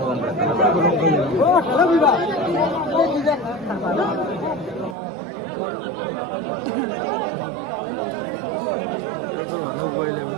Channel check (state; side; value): drops out; left; at 5.0 s